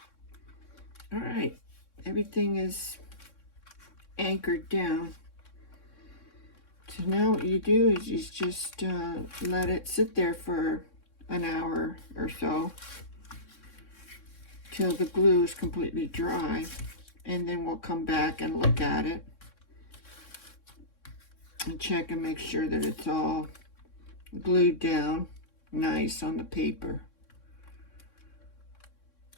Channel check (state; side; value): late; right; 3.6 ms